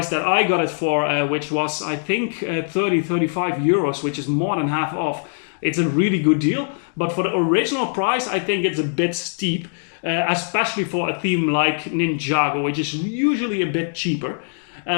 that I got it for, which was I think 35 euros, which is more than half off, it's a really good deal. But for the original price, I think it's a bit steep, especially for a theme like Ninjago, which is usually a bit cheaper.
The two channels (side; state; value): right; silent; digital silence